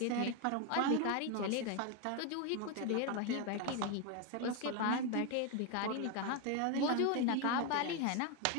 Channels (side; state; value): both; different; correlation 0.01